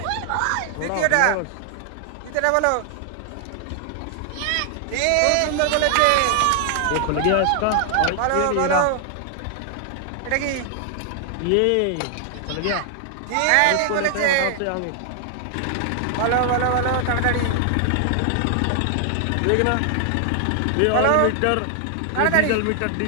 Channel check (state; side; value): different; both; correlation 0.00